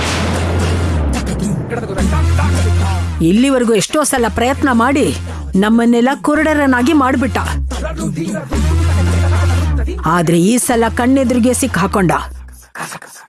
ಇಲ್ಲಿವರೆಗೂ ಎಷ್ಟೋ ಸಲ ಪ್ರಯತ್ನ ಮಾಡಿ ನಮ್ಮನ್ನೆಲ್ಲ ಕುರುಡರನ್ನಾಗಿ ಮಾಡ್ಬಿಟ್ಟ. ಆದ್ರೆ ಈ ಸಲ ಕಣ್ಣೆದುರಿಗೆ ಸಿಕ್ ಹಾಕೊಂಡ.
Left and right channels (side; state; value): both; identical; correlation 1.00